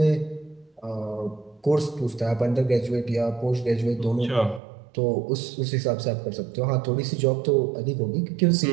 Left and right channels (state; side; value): drops out; left; at 4.6 s